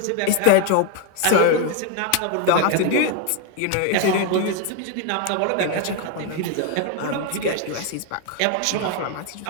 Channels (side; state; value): both; different; correlation 0.01